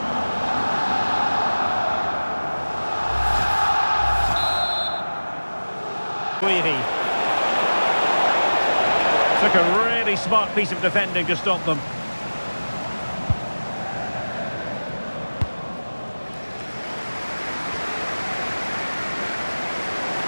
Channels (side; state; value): both; inverted; correlation -1.00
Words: Wheather. Took a really smart piece of defending to stop them.